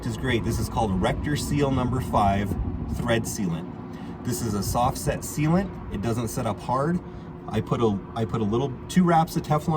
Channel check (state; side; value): identical; both; correlation 1.00